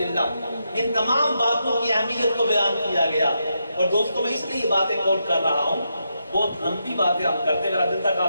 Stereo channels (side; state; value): both; inverted; correlation -0.83